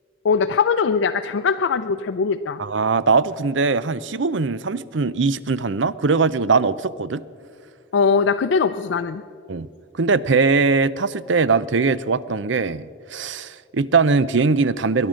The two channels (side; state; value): both; normal; correlation -0.10